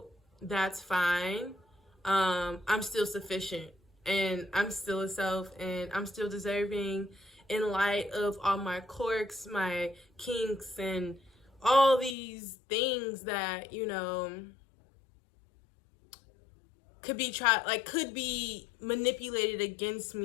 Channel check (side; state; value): right; drops out; at 12.2 s